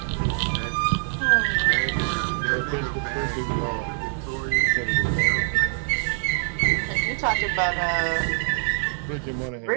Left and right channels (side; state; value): left; silent; 62 dB below the other